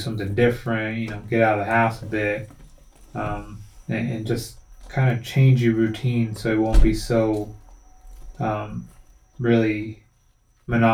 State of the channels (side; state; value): both; identical; correlation 1.00